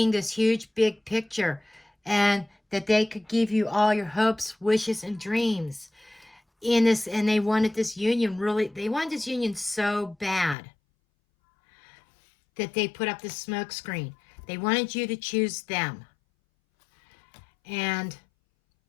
this huge, big picture, and that they could give you all your hopes, wishes, and dreams in this. And they wanted this union they wanted this union so bad that they put up this smoke screen. They wanted you to choose them. And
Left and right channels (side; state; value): right; drops out; at 10.6 s